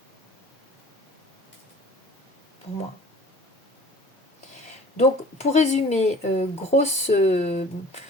Pour moi. Donc, pour résumer, grosse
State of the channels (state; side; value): normal; both; correlation 0.47